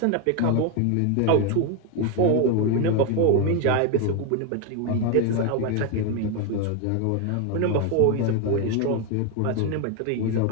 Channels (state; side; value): different; both; correlation 0.01